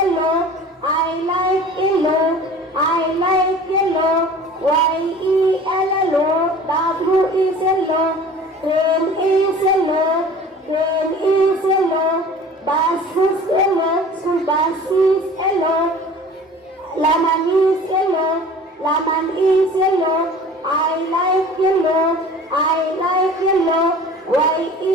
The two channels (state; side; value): normal; both; correlation 0.43